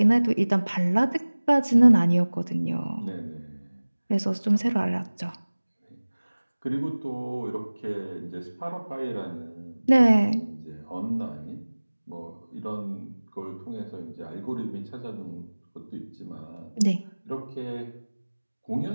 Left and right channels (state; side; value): inverted; both; correlation -1.00